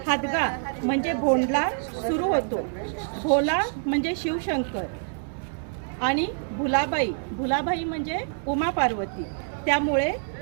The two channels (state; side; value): silent; left; 61 dB below the other